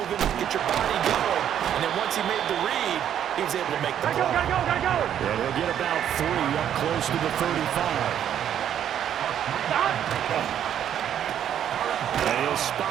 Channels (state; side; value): quieter; left; 9.9 dB